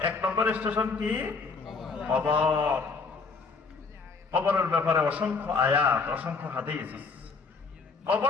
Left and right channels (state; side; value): quieter; right; 4.5 dB